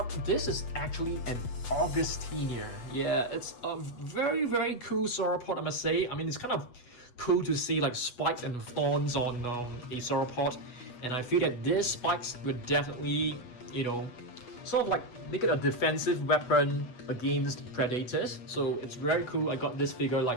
this is actually an Augustiner. Yeah, it's a very cool sauropod, I must say. I mean, it's kind of cool to see like spikes and thorns on a sauropod, and I feel that these spikes would definitely, you know, sort of like make it a defensive weapon against predators. So it's very cool. I got this figure like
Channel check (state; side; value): late; right; 8.2 ms